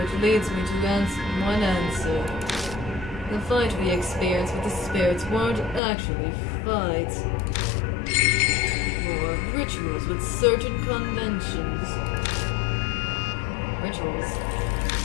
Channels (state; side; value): drops out; right; at 5.8 s